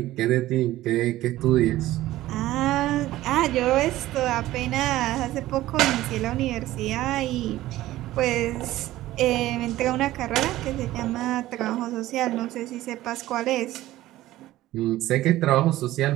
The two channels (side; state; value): left; quieter; 15.7 dB